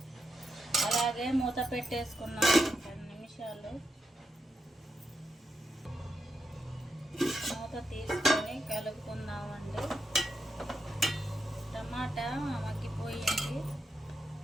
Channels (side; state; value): both; normal; correlation 0.85